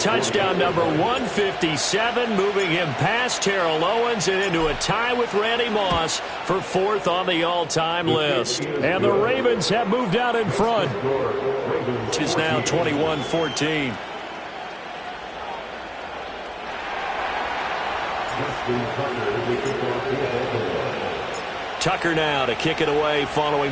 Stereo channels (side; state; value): both; identical; correlation 1.00